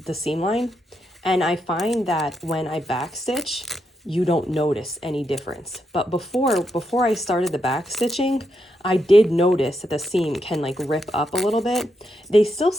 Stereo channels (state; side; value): normal; both; correlation 0.82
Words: seam line, and I find that when I backstitch, you don't notice any difference. But before I started the backstitching, I did notice that the seam can like rip up a little bit. They still